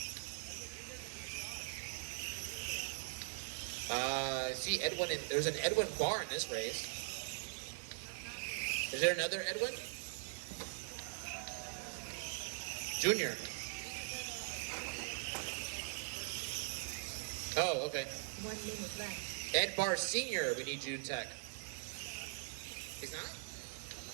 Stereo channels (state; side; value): silent; left; digital silence